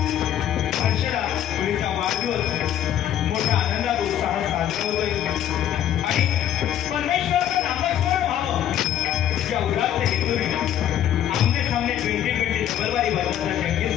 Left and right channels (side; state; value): right; quieter; 10.8 dB